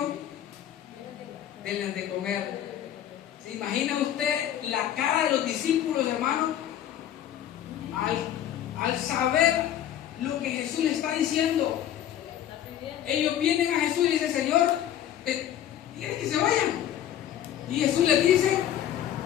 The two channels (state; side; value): quieter; right; 11.0 dB